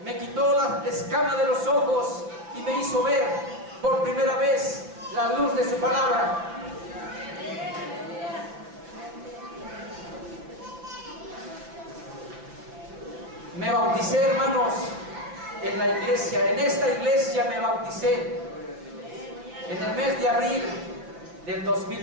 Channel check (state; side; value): late; left; 6.1 ms